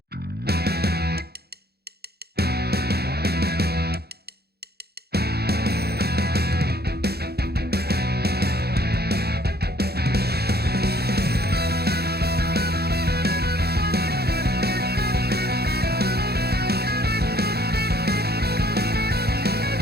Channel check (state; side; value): late; left; 0.46 ms